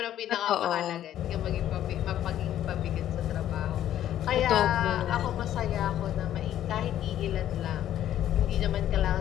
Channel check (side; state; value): right; quieter; 11.7 dB